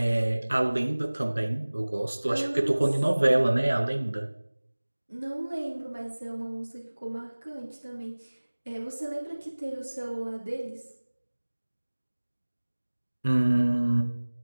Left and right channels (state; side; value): inverted; both; correlation -1.00